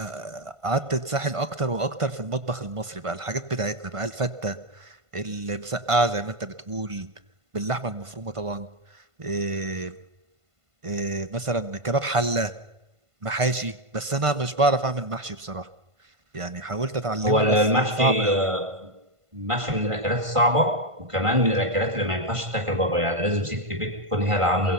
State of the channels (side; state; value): left; late; 1.5 ms